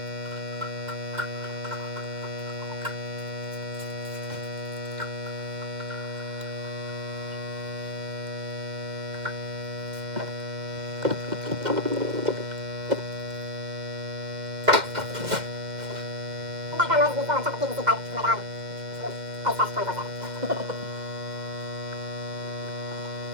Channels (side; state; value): left; late; 2.1 ms